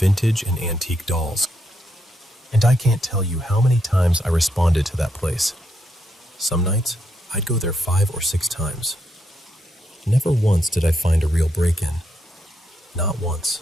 and antique dolls, and I can't tell you how many times I responded to that place. Some nights, I'd go there 5 or 6 times. Never once did I find a real break-in. Not once.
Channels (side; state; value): both; normal; correlation 0.79